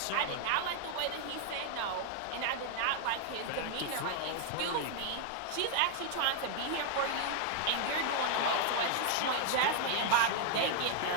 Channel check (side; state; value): both; different; correlation 0.00